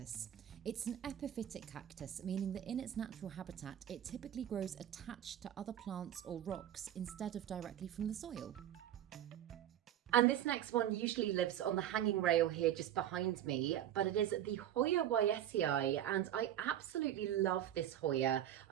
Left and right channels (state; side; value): quieter; left; 11.3 dB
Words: It's an epiphytic cactus, meaning that in its natural habitat it typically grows attached to other plants or rocks instead of directly from the soil. And this next one usually lives on the hanging rail here just behind me, but it is the Hoya Rapadafora, and I absolutely love this Hoya.